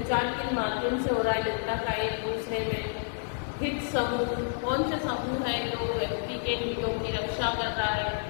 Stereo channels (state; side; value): silent; right; 58 dB below the other